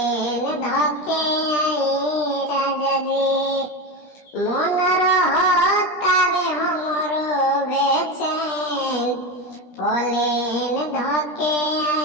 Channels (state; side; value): late; right; 17 ms